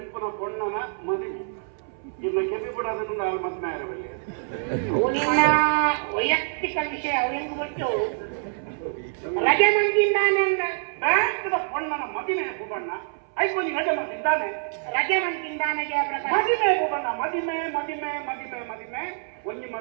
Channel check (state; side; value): silent; left; 60 dB below the other